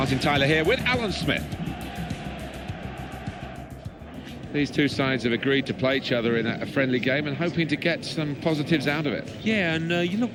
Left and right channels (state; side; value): identical; both; correlation 1.00